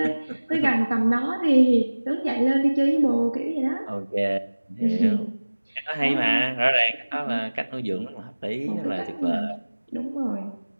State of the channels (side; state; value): both; inverted; correlation -1.00